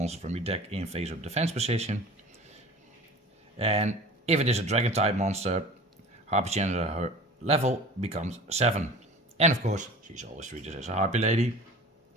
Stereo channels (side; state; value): both; normal; correlation 0.40